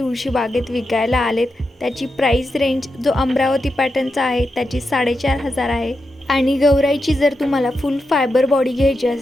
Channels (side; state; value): both; normal; correlation 0.87